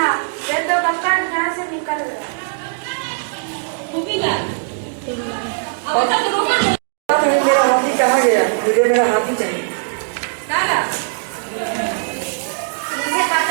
वे तो कब का यहाँ से निकल गया। नहीं, मेरा हाथी कहाँ गया? मुझे मेरा हाथी चाहिए। मुझे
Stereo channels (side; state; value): left; silent; 66 dB below the other